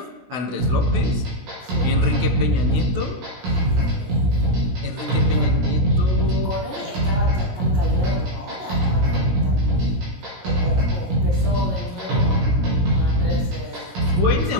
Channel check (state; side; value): late; left; 17 ms